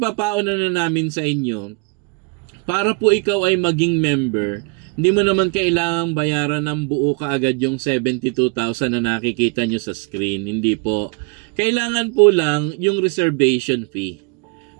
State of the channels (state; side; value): quieter; left; 32.7 dB